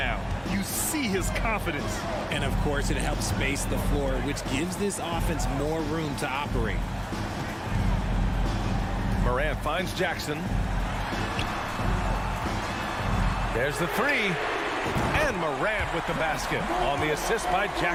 You see his confidence. And, of course, it helps space the floor, which gives this offense more room to operate. Morant finds Jackson. There's the three. And Morant with the basket on the assist by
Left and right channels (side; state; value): both; identical; correlation 1.00